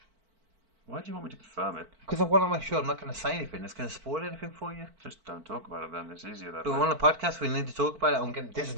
Why do you want me to confirm it? Because I want to make sure I'm not going to say anything that's going to spoil anything for you. Just don't talk about it then. It's easier that But way. we're on a podcast. We need to talk about it. This is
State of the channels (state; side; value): late; left; 4.5 ms